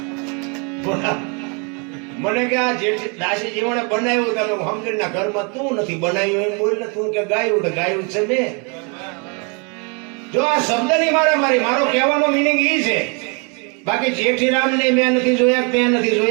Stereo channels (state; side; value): quieter; left; 34.4 dB